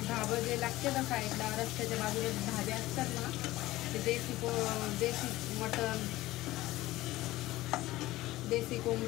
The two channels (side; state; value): right; quieter; 17.3 dB